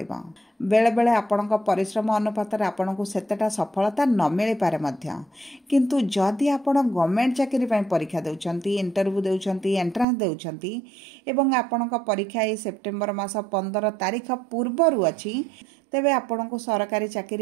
बेले बेले आपणक परिश्रम अनुपात रे आपणको सेतेटा सफलता न मिली पारे मध्य। किंतु जदि आपण गवर्नमेंट चाकरी पई परीक्षा देउछंती, इंटरव्यू देउछंती, एंट्रांस देउछंती एवं आपणक परीक्षा ए सेप्टेम्बर मास 15 तारीख पूर्वरु अछि, तेबे आपणको सरकारी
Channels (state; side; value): drops out; left; at 10.1 s